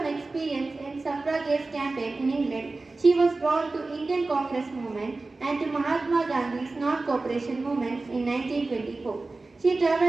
experience in suffragette campaign in England, she was drawn to Indian Congress movement and to Mahatma Gandhi's non-cooperation movement in 1924. She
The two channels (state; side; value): quieter; left; 3.4 dB